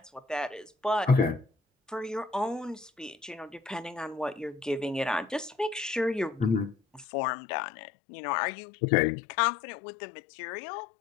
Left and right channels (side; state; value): right; drops out; at 7.1 s